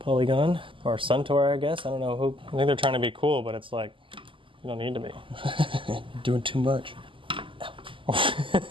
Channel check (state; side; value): late; left; 0.25 ms